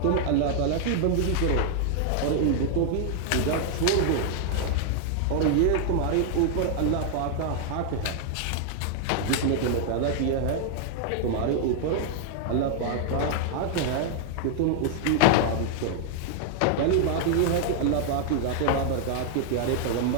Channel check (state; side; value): different; both; correlation 0.00